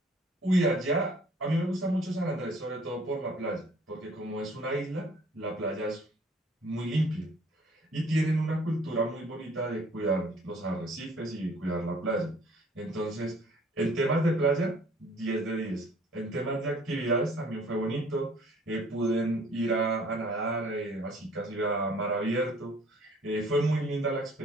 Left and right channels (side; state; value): both; normal; correlation 0.56